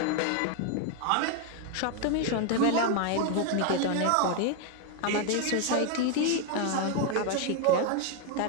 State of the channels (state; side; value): different; both; correlation 0.01